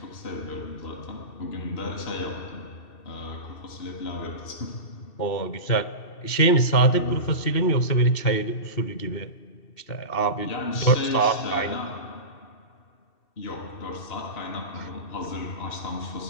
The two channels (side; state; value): right; late; 2.7 ms